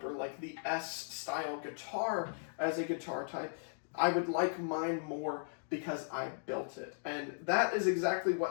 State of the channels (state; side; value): silent; right; digital silence